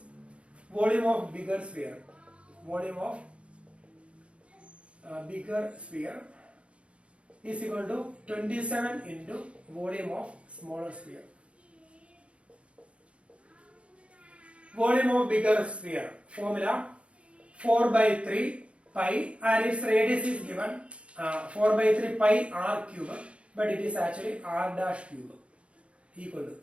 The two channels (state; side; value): late; left; 0.060 ms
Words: volume of bigger sphere. Volume of bigger sphere is equal to 27 into volume of smaller sphere. Volume of bigger sphere formula 4 by 3 pi, and its radius is given 4 by 3 pi r cube, but it is actually r dash cube, equal to,